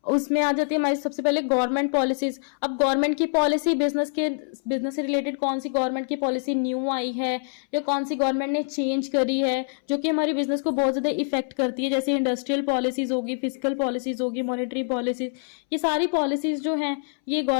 उसमें आ जाती है हमारी। सबसे पहले गवर्नमेंट पॉलिसीज। अब गवर्नमेंट की पॉलिसी, बिजनेस से रिलेटेड कौन सी गवर्नमेंट की पॉलिसी न्यू आई है या कौन सी गवर्नमेंट ने चेंज करी है जो कि हमारी बिजनेस को बहुत ज्यादा इफेक्ट करती है, जैसे इंडस्ट्रियल पॉलिसीज होगी, फिजिकल पॉलिसीज होगी, मॉनेटरी पॉलिसीज, ये सारी पॉलिसीज जो हैं ये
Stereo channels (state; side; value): silent; right; 62 dB below the other